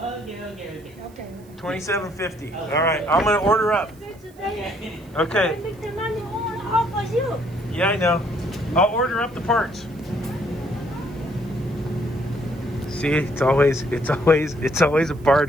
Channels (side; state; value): right; noise; hiss, 28 dB below the sound